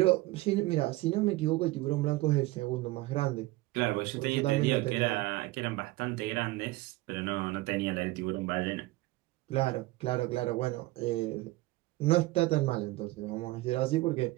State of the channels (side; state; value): left; quieter; 19.6 dB